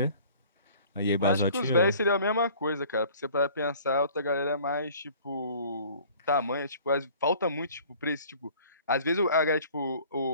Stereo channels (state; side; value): inverted; both; correlation -0.50